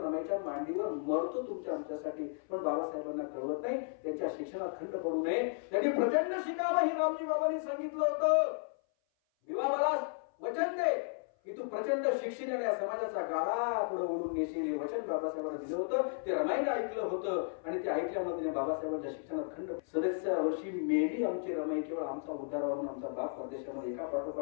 रमाईच्या मांडीवर मरतो तुमच्या आमच्यासाठी. पण बाबासाहेबांना कळवत नाही, त्यांच्या शिक्षणात खंड पडू नये, त्यांनी प्रचंड शिकावं हे रामजी बाबांनी सांगितलं होतं. विवा मला वचन दे की तू प्रचंड शिक्षणाने या समाजाचा गाळा पुढे ओढून नेशील, हे वचन बाबासाहेबांना दिलं होतं. ते रमाईने ऐकलं होतं आणि ते ऐकल्यामध्ये बाबासाहेबांच्या शिक्षणात खंड. 37व्या वर्षी मेली आमची रमाई. केवळ आमचा उद्धार व्हावा, आमचा बाप परदेशामध्ये एका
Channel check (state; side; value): silent; right; 55 dB below the other